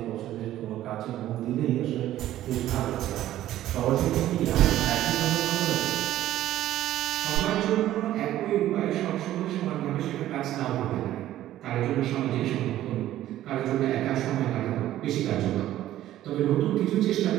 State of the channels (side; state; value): left; quieter; 13.4 dB